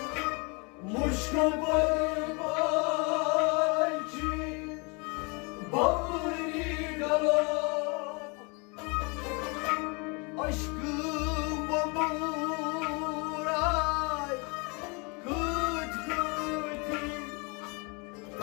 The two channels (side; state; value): right; quieter; 31.1 dB